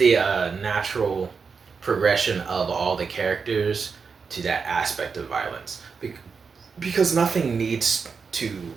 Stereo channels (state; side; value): quieter; left; 5.4 dB